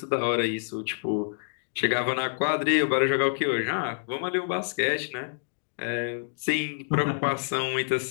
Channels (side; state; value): right; silent; digital silence